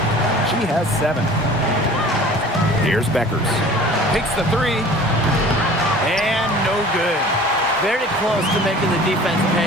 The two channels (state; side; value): normal; both; correlation 0.45